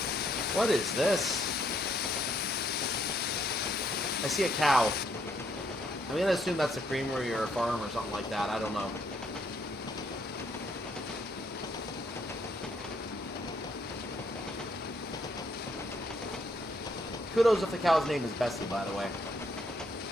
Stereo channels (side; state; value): both; normal; correlation 0.71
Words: What is this? I see a cow. I'm going to assume that's a creamery or a farm or something like that. I don't know. Kudos if the cow's name is Bessie, by the way.